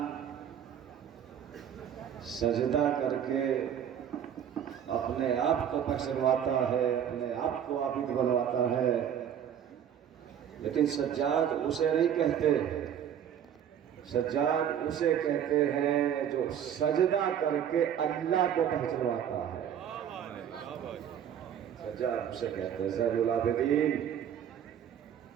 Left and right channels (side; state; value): left; quieter; 9.2 dB